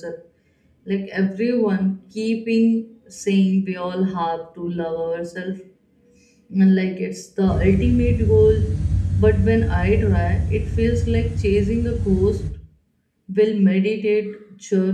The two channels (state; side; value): identical; both; correlation 1.00